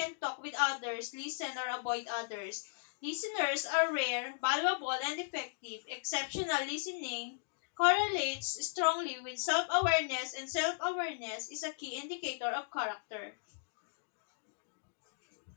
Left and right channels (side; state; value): right; silent; digital silence